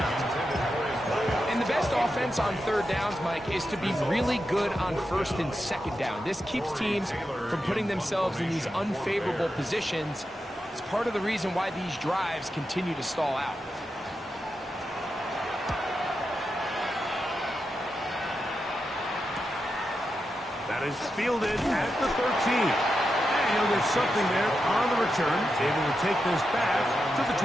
And the best offense on 3rd downs, Mike, is to be really good on 1st and 2nd down. This keeps teams from putting themselves in these unfavorable positions. It's part of the reason why these drives continue to stall out. That is fielded at the 13. And there's something there on the return. Able to take this back to the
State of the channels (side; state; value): both; normal; correlation 0.88